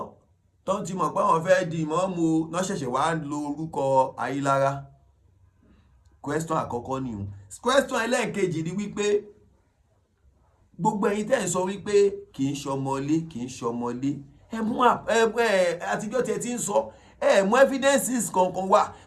tó ti mọ̀ pé wọ́n fẹ́ di ìmọ̀ọ́mù náà ṣẹ̀ṣẹ̀ wá lo orúkọ Ayílára question àkọ́kọ́ ni o question ẹlẹ́ẹ̀kejì ni wípé gbogbo ẹ̀yin tẹ́ ń sọ wípé kì í ṣọmọlé ẹ mú àtijọ́ tẹ́ ti ń sọ ẹ mú evidences kankan wá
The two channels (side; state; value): both; identical; correlation 1.00